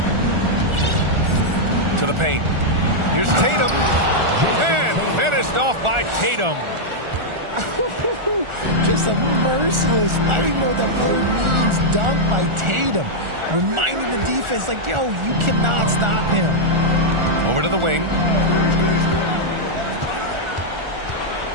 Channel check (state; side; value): late; left; 1.4 ms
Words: To the paint. Here's Tatum. And finished off by Tatum. Just a merciless, I don't even know what that word means, dunk by Tatum. Reminding the defense, like, yo, you cannot stop him. Over to the wing.